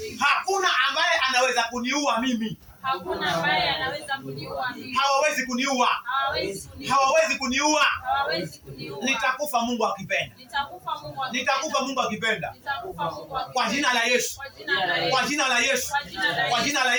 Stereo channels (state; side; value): identical; both; correlation 1.00